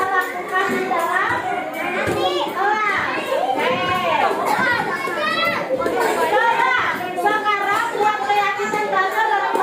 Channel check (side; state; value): both; identical; correlation 1.00